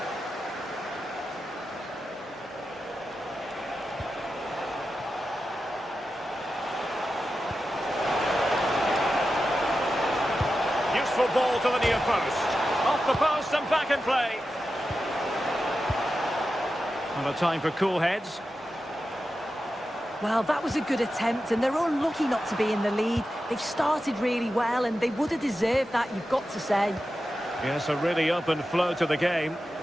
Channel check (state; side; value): normal; both; correlation 0.91